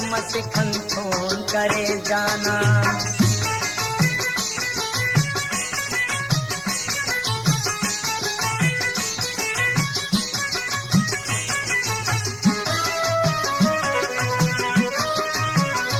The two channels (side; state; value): both; identical; correlation 1.00